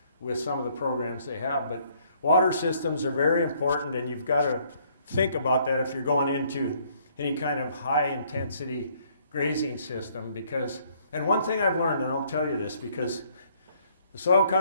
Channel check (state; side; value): inverted; both; correlation -0.64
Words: with some of the programs they have. But water systems are very important, and you've got to think about that if you're going into any kind of high intensity grazing system, because, and one thing I've learned, and I'll tell you this because the soil